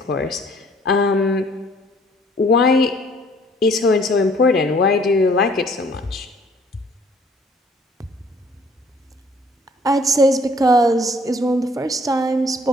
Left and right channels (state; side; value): normal; both; correlation 0.59